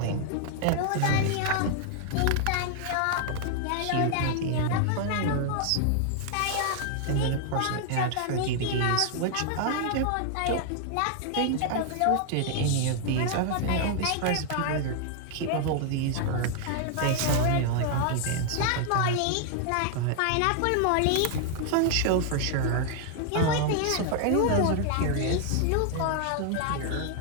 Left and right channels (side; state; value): both; different; correlation 0.00